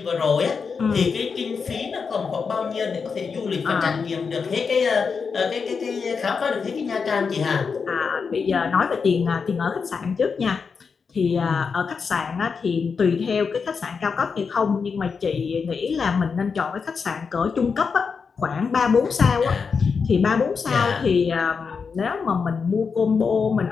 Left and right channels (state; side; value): quieter; right; 5.5 dB